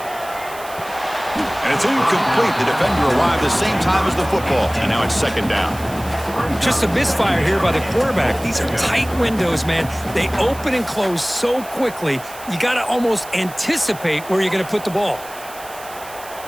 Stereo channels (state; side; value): noise; right; hiss, 17 dB below the sound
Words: And it's incomplete. The defender arrived the same time as the football. And now it's second down. Just a misfire here by the quarterback. These are tight windows, man. They open and close so quickly. You got to almost anticipate where you're going to put the ball.